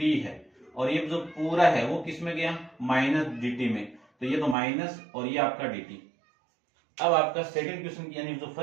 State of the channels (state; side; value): drops out; left; at 4.5 s